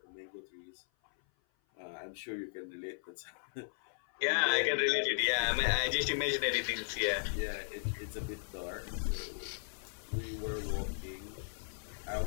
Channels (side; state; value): right; silent; 53 dB below the other